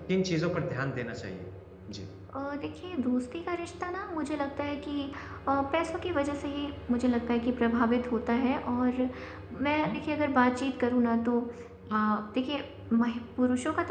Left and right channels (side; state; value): both; identical; correlation 1.00